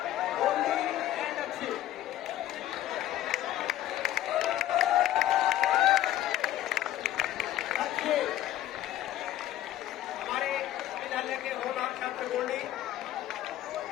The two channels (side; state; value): right; quieter; 13.3 dB